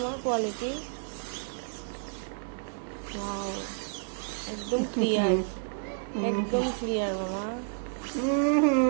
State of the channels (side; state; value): left; silent; digital silence